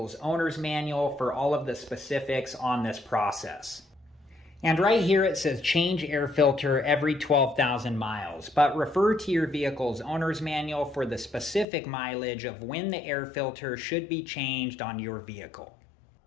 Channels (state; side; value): drops out; right; at 11.7 s